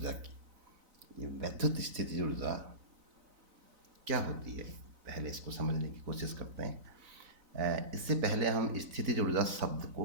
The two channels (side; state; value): left; late; 4.0 ms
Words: की। ये वैद्युत स्थितिज ऊर्जा क्या होती है, पहले इसको समझने की कोशिश करते हैं। इससे पहले हम स्थितिज ऊर्जा शब्द को